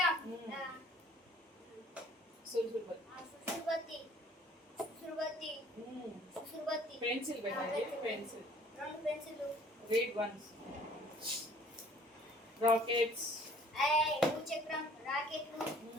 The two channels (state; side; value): normal; both; correlation 0.56